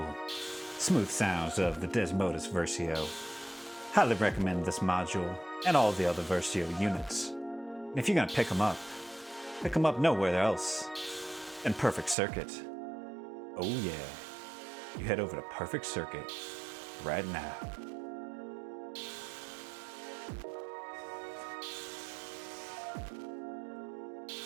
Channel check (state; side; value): drops out; left; at 12.2 s